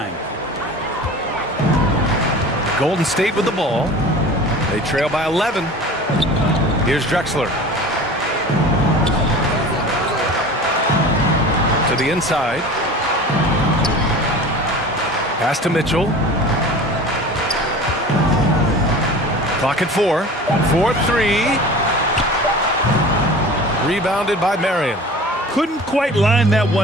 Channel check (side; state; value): both; normal; correlation 0.39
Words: Golden State with the ball. They trail by 11. Here's Drexler. To the inside. Pass to Mitchell. Clock at 4. 4-3. Rebounded by Marion. Couldn't quite line that